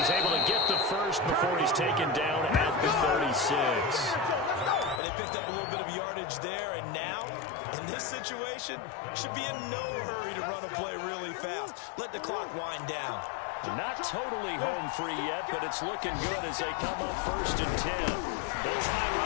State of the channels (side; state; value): right; drops out; at 5.0 s